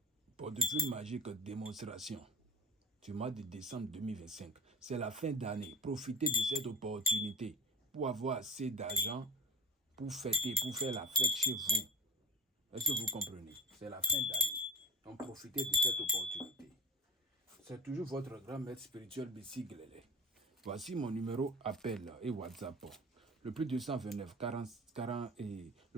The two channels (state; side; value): normal; both; correlation 0.35